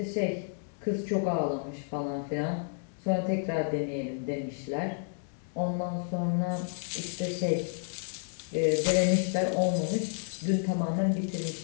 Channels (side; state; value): right; silent; 57 dB below the other